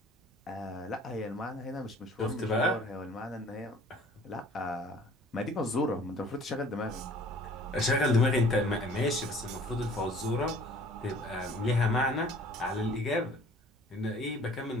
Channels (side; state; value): both; normal; correlation 0.51